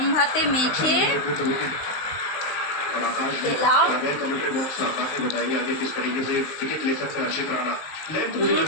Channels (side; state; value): right; late; 19 ms